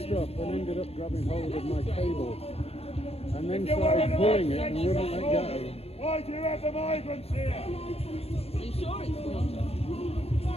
and ended up grabbing hold of my cable. And then started pulling it and wouldn't let go. Why do you have the migrants here? Are you sure it's not?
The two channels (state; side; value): late; right; 0.29 ms